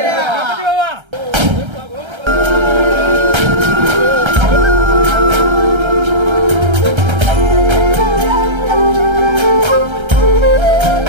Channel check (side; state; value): left; late; 1.3 ms